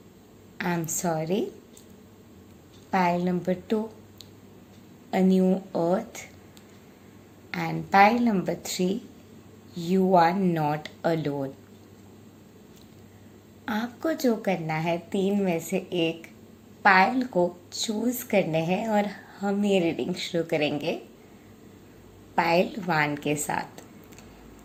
I am sorry. Pile number 2, a new earth. And pile number 3, you are not alone. आपको जो करना है 3 में से एक पाइल को चूज करने हैं और हम ये रीडिंग शुरू करेंगे पाइल 1 के साथ।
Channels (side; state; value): both; identical; correlation 1.00